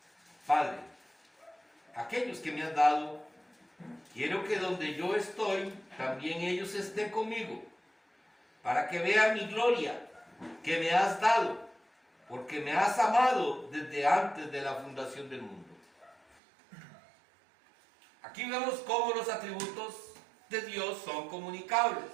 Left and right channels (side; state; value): left; drops out; at 16.4 s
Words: Padre, aquellos que me has dado, quiero que donde yo estoy, también ellos estén conmigo, para que vean mi gloria que me has dado, porque me has amado desde antes de la fundación del mundo. Aquí vemos cómo los atributos de Dios son comunicables.